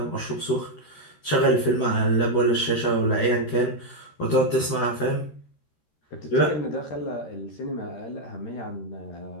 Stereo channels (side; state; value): right; late; 13 ms